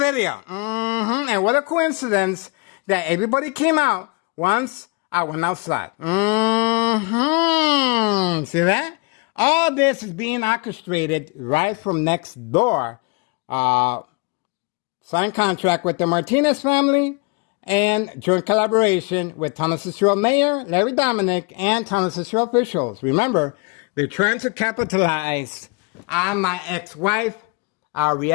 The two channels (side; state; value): right; quieter; 29.6 dB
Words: And what a coincidence that everybody came out once I went outside. See that? All this is being orchestrated right from next door. Signed contract with the Martinez family and joint collaboration with Townless Cicero Mayor Larry Dominic and Townless Cicero officials. Remember, they're trying to capitalize on my ex-wife, our